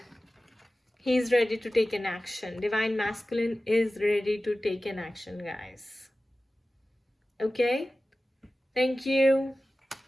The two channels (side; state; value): both; normal; correlation 0.96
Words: he is ready to take an action. Divine masculine is ready to take an action, guys. Okay? Thank you.